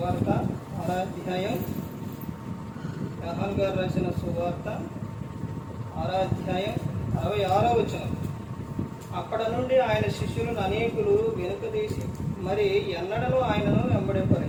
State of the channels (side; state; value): both; identical; correlation 1.00